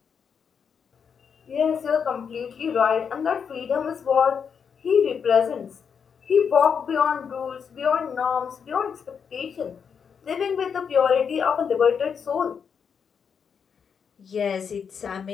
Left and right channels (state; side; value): quieter; right; 6.7 dB